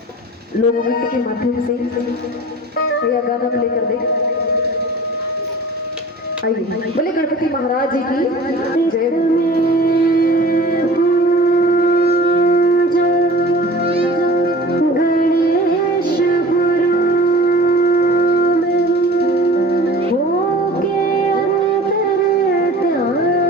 लोक नृत्य के माध्यम से या गाना प्ले कर दे। आइए बोले गणपति महाराज जी की जय।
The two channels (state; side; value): normal; both; correlation 0.41